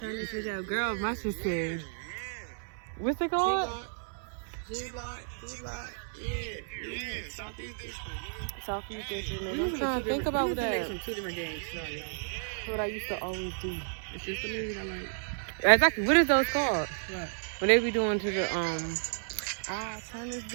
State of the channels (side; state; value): left; silent; 55 dB below the other